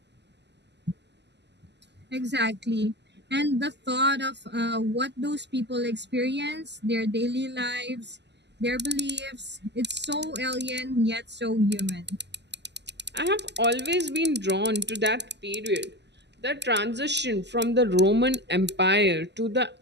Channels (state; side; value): late; left; 0.50 ms